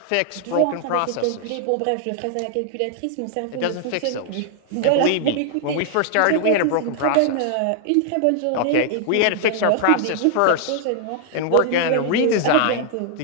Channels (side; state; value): both; different; correlation 0.00